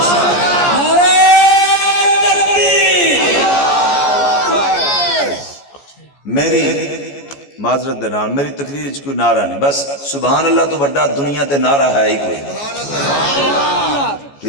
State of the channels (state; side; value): late; right; 14 ms